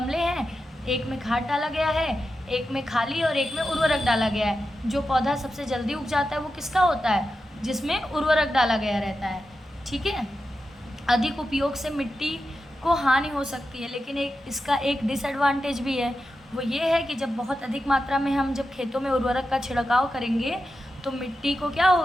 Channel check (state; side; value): normal; both; correlation 0.90